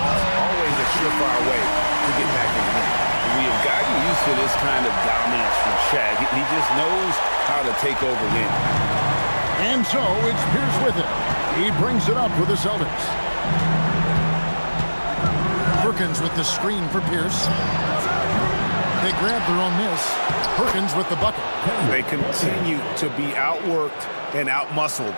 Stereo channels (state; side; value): inverted; both; correlation -1.00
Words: Always a surefire way to get back in the game. We have gotten used to this kind of dominance from Shaq. He just knows how to take over games. And so it's Pierce with it. He brings it up with the Celtics. Perkins with the screen for Pierce. They grab their own miss. Perkins with the bucket. They continue to be outworked and outmuscled